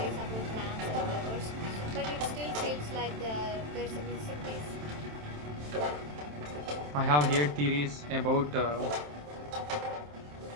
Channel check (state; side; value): late; left; 27 ms